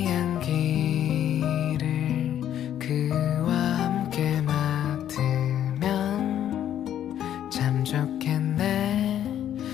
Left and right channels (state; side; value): quieter; right; 10.7 dB